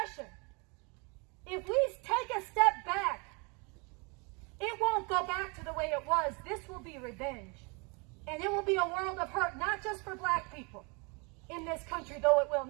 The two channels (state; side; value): quieter; left; 31.6 dB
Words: if we take a step back, it won't go back to the way it was. This will be revenge. And it will be a world of hurt, not just for black people in this country, though it will.